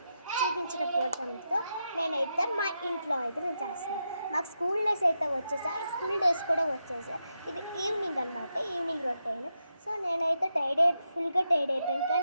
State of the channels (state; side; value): inverted; both; correlation -0.86